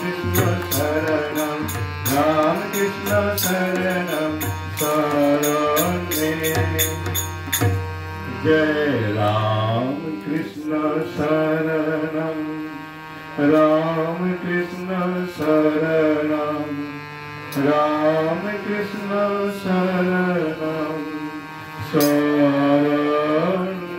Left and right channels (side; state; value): both; identical; correlation 1.00